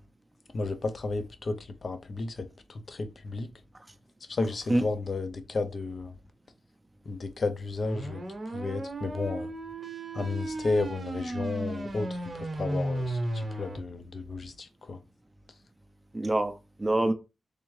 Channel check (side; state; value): both; normal; correlation 0.92